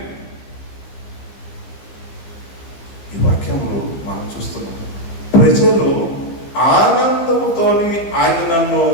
ఈ వాక్యంలో మనం చూస్తున్నాం. ప్రజలు ఆనందంతోని ఆయన నన్ను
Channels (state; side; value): late; right; 15 ms